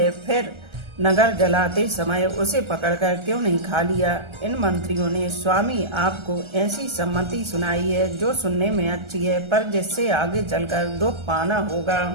फिर नगर जलाते समय उसे पकड़कर क्यों नहीं खा लिया। इन मंत्रियों ने स्वामी आपको ऐसी सम्मति सुनाई है जो सुनने में अच्छी है, पर जिससे आगे चलकर दुख पाना होगा।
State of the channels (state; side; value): late; left; 1.3 ms